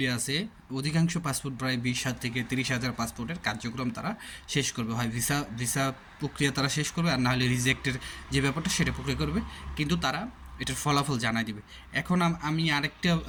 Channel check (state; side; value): identical; both; correlation 1.00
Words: আছে, অধিকাংশ পাসপোর্ট প্রায় 20,000 থেকে 30,000 পাসপোর্টের কার্যক্রম তারা শেষ করবে। হয় ভিসা ভিসা প্রক্রিয়া তারা শেষ করবে, আর নাহলে রিজেক্টের যে ব্যাপারটা সেটা প্রক্রিয়া করবে, কিন্তু তারা এটার ফলাফল জানাই দিবে। এখন আমি আরেকটা